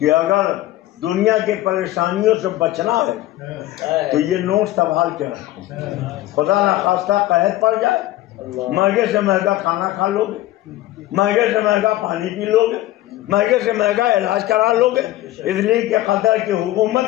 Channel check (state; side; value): quieter; right; 15.5 dB